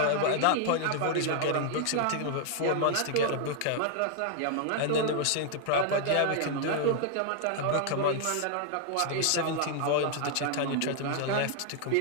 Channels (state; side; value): different; both; correlation 0.00